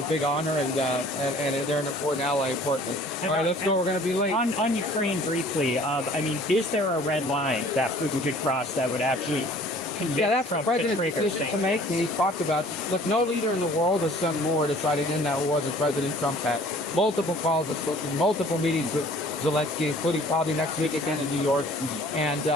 big honor, and they're an important ally, importantly. All right, let's go. We're going to be late. On Ukraine, briefly, I mean, is there a red line that Putin could cross that would actually convict that's Trump the president's to decision to make. He talked about, look, no leader in the world has done more deciding in that war than President Trump had. Multiple calls, multiple meetings with Zelensky, including probably next week again in New York, and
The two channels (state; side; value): normal; both; correlation 0.52